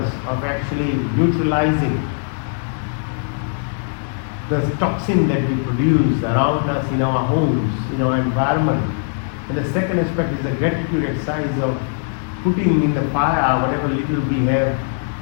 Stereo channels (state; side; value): silent; right; digital silence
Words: of actually neutralizing the toxin that we produce around us in our homes, in our environment. And the second aspect is the gratitude exercise of putting in the fire whatever little we have